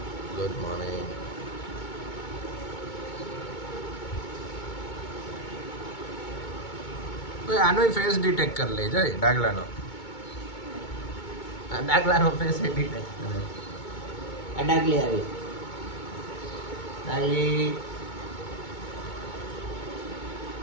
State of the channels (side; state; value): right; late; 2.2 ms